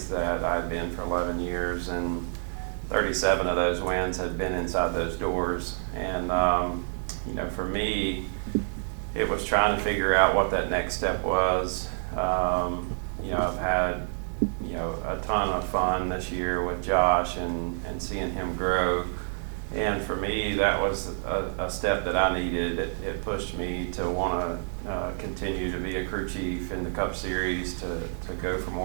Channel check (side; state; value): left; silent; digital silence